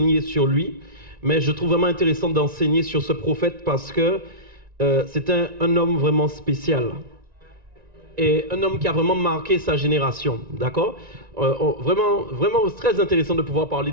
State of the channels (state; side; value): late; left; 1.9 ms